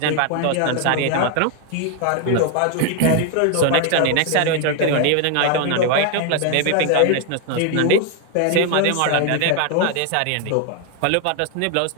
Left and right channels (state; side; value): different; both; correlation 0.01